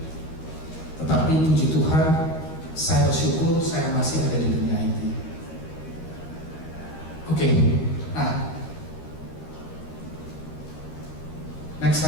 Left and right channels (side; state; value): right; late; 13 ms